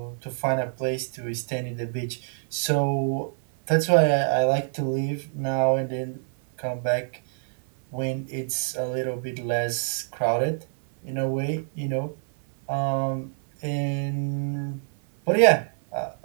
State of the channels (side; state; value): left; silent; 57 dB below the other